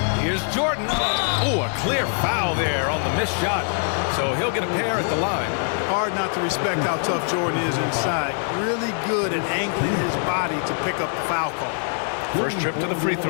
Here's Jordan. Oh, a clear foul there on the missed shot. So he'll get a pair at the line. Hard not to respect how tough Jordan is inside. Really good at angling his body to pick up the foul call. First trip to the free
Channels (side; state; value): right; silent; 56 dB below the other